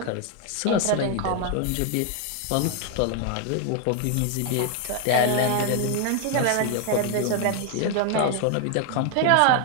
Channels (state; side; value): different; both; correlation 0.01